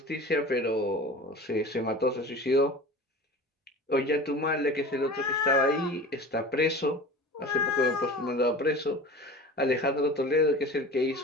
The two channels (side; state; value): both; normal; correlation 0.37